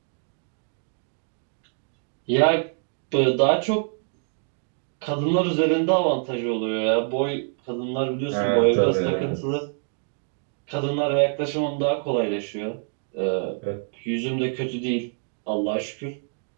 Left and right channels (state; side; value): silent; left; 55 dB below the other